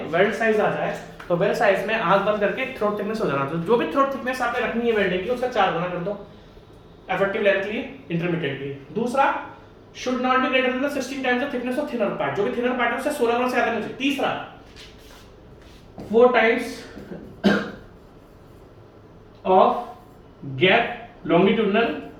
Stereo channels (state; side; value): identical; both; correlation 1.00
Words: वेल्ड साइज आ जाए तो वेल्ड साइज में आंख बंद करके थ्रोट थिकनेस हो जाना। तो जो भी थ्रोट थिकनेस आपने रखनी है वेल्डिंग की उसका 4 गुना कर दो इफेक्टिव लेंथ के लिए, इंटरमीडिएट के लिए। दूसरा, should not be greater than 16 times the thickness of thinner part, जो भी thinner part है उससे 16 गुना से ज्यादा नहीं चाहिए। तीसरा, 4 times of gap longitudinal,